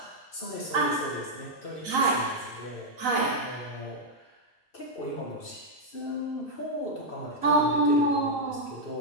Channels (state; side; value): normal; both; correlation -0.02